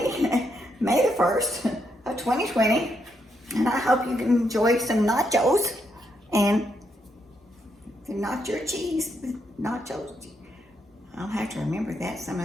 May the 1st of 2020, and I hope you can enjoy some nachos and the nacho cheese, nachos. I'll have to remember that some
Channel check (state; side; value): normal; both; correlation 0.79